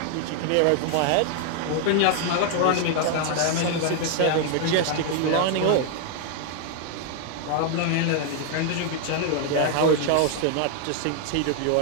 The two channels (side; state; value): both; different; correlation 0.00